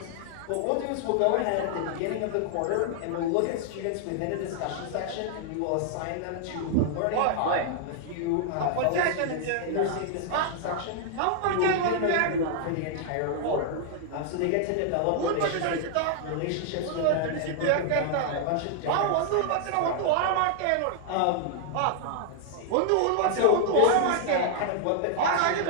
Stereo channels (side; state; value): both; different; correlation 0.00